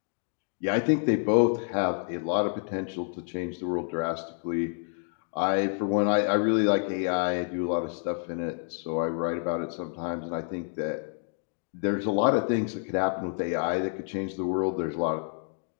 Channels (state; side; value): silent; right; 56 dB below the other